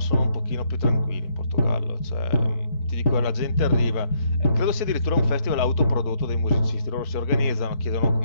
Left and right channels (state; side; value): late; right; 4.6 ms